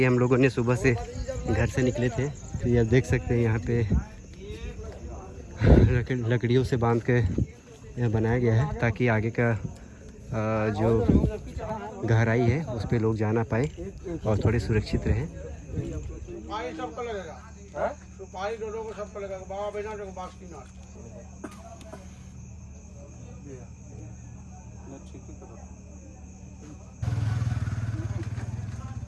हम लोगों ने सुबह से घर से निकले थे। तो ये आप देख सकते हैं यहाँ पे लकड़ियों से बांध के यहाँ बनाया गया है, ताकि आगे का जो गहराई है उस पे लोग जा ना पाए और थोड़े सुरक्षित रहें। सुपारी सबको लगेगा, सुपारी दोनों को सबको लगेगा। बाबा बैजनाथ को बासुकीनाथ।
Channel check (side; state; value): both; identical; correlation 1.00